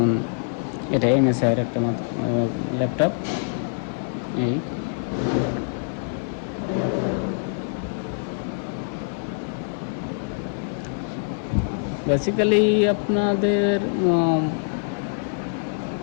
এটা MSI এর একটা ল্যাপটপ। এই বেসিক্যালি আপনাদের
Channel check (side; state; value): right; silent; 58 dB below the other